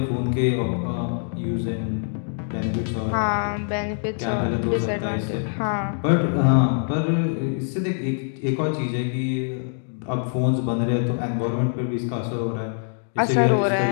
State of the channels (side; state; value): right; silent; 63 dB below the other